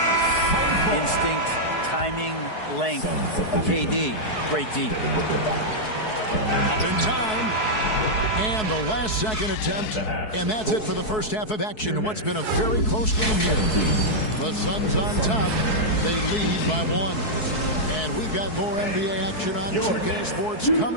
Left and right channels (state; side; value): late; right; 4.7 ms